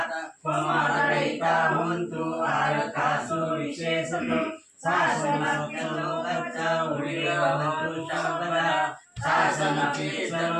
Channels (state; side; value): identical; both; correlation 1.00